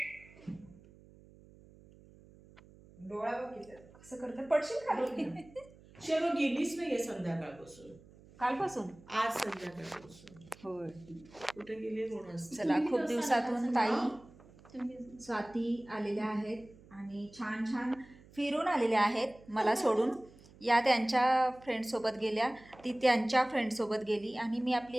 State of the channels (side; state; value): right; noise; hum, 23 dB below the sound